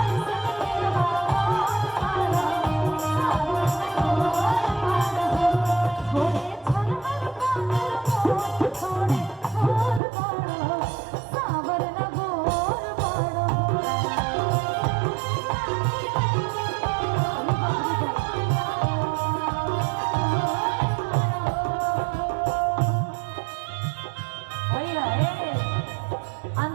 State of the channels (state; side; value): drops out; left; at 10.0 s